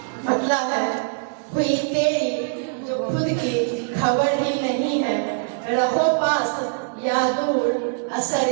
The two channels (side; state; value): left; silent; digital silence